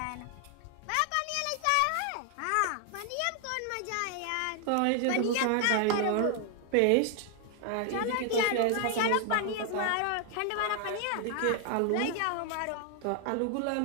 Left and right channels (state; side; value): different; both; correlation 0.00